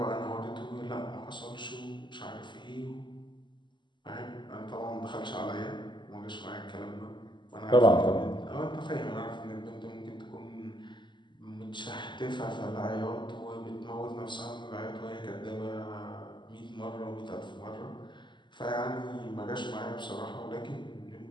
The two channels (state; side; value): late; right; 0.22 ms